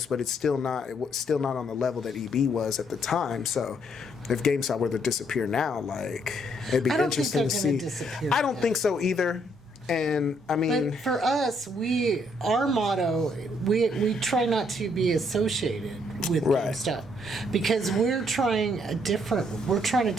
but it's still not on the level that EB was at the time. So if GameStop were to disappear now, it'd be I don't think interesting they're to gonna see. disappear I don't now. think so either. And But for us, our motto, we try not to be associated with Right. GameStop because we're trying to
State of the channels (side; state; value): both; normal; correlation 0.70